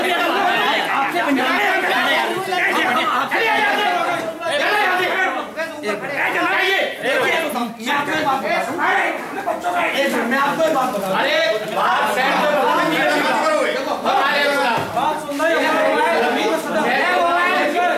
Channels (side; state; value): both; identical; correlation 1.00